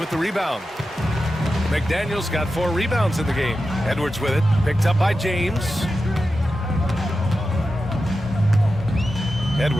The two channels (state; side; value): normal; both; correlation 0.91